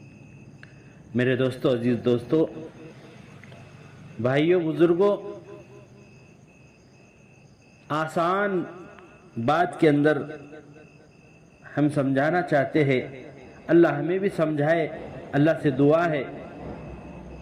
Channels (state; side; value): identical; both; correlation 1.00